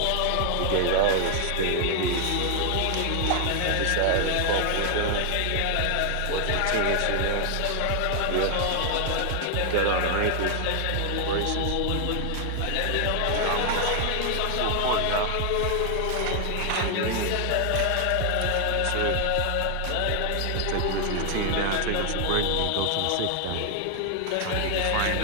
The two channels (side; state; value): both; different; correlation 0.00